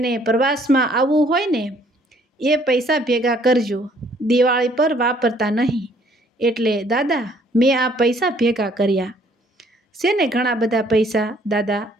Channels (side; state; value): both; normal; correlation 0.62